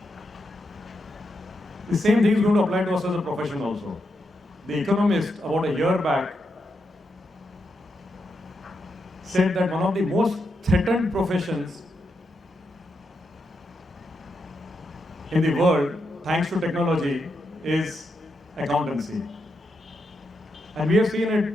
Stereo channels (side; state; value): both; normal; correlation 0.84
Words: The same thing is going to apply to us as a profession also. The Economist, about a year back, said that one of the most threatened professions in the world, thanks to technology, is accountancy. And we have seen it,